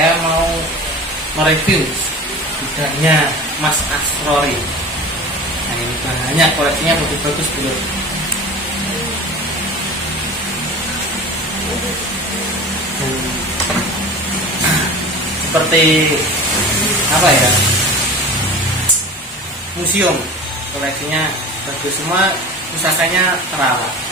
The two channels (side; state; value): both; normal; correlation 0.36